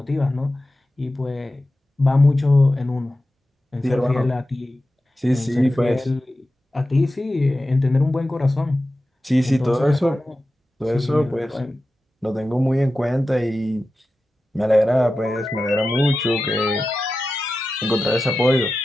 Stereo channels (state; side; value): normal; both; correlation 0.93